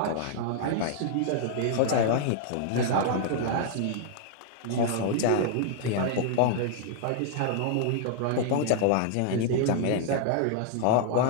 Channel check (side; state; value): both; different; correlation -0.01